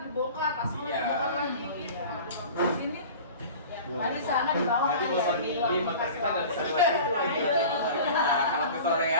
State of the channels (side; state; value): both; inverted; correlation -0.39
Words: dibongkar, pas Iya. dibongkar lagi gitu. Di sini Tadi sana di bawah Jadi ya, bosan di Di ruang podcast kita nggak bisa kelas. lewat situ. Nah, kalau ke sore